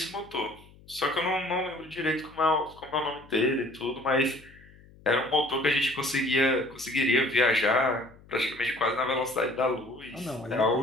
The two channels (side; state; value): left; noise; hum, 24 dB below the sound